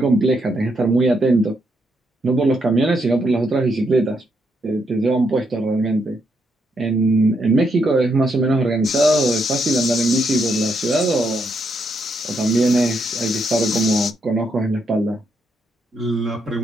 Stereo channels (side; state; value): both; normal; correlation 0.78